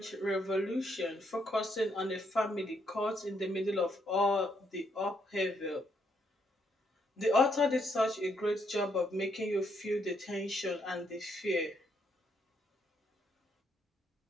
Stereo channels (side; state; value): both; normal; correlation 0.74